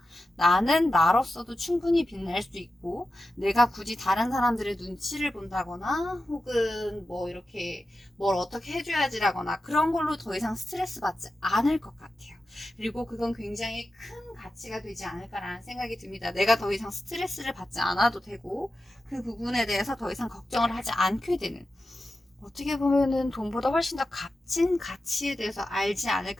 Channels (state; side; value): normal; both; correlation 0.92